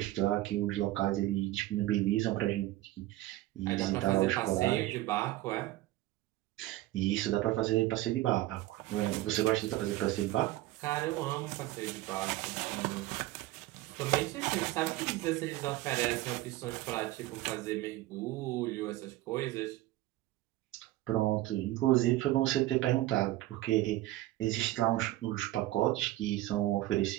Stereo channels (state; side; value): quieter; left; 16.4 dB